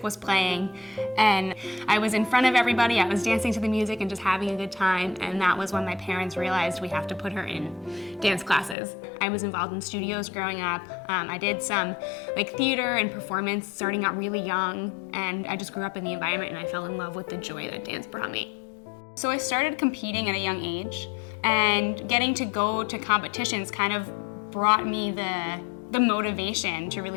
was playing, and I was in front of everybody. I was dancing to the music and just having a good time, and that was when my parents realized we have to put her in dance classes. I was involved in studios growing up. I did some theater and performance starting out really young, and I just grew up in the environment and I fell in love with the joy that dance brought me. So I started competing at a young age, and getting to go to competitions kind of brought me the motivation to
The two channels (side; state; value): right; drops out; at 8.8 s